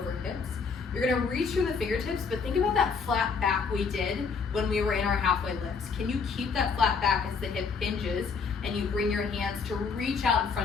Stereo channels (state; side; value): quieter; right; 5.3 dB